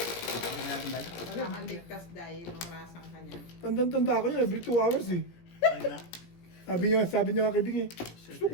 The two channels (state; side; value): late; right; 17 ms